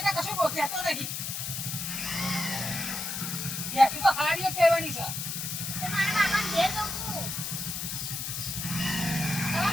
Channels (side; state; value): left; noise; hiss, 4 dB below the sound